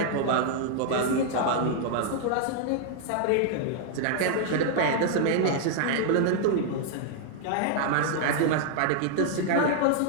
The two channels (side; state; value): both; different; correlation 0.00